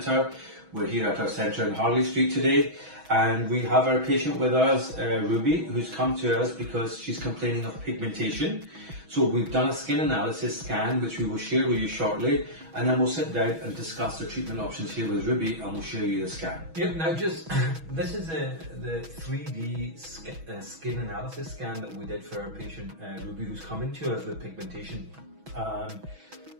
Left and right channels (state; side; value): late; left; 6.2 ms